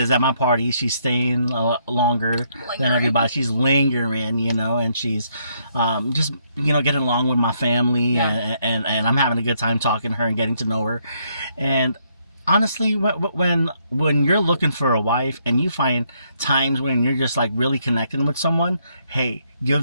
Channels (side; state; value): both; inverted; correlation -0.73